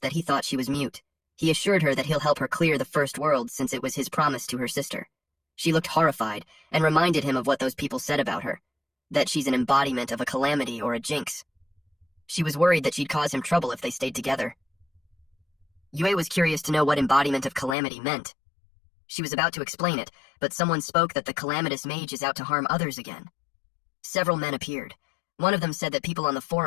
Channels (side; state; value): right; drops out; at 17.8 s